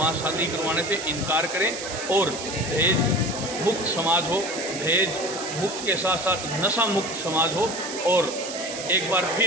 शादी करवाने से इनकार करें और दहेज मुक्त समाज हो, दहेज मुक्त के साथ साथ नशा मुक्त समाज हो और एक बार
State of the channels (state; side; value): noise; right; hiss, 8 dB below the sound